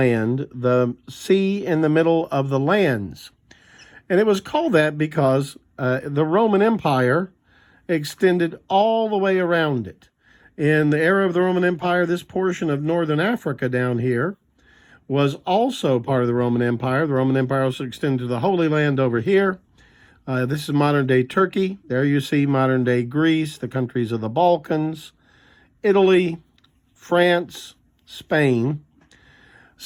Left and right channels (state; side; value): identical; both; correlation 1.00